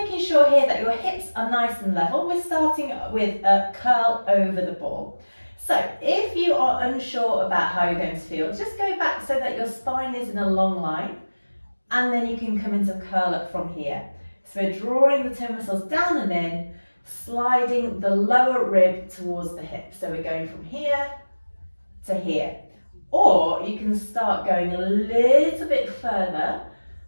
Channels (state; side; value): inverted; both; correlation -1.00